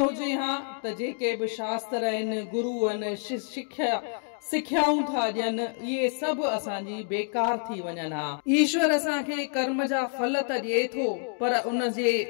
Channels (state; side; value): silent; right; 59 dB below the other